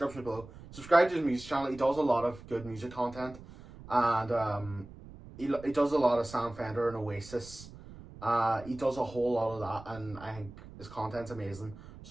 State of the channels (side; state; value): right; noise; rumble, 17 dB below the sound